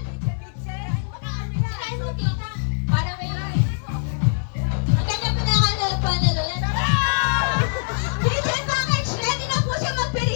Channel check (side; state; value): right; silent; digital silence